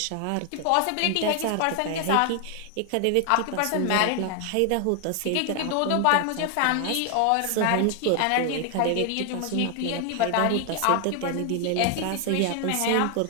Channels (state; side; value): different; both; correlation 0.00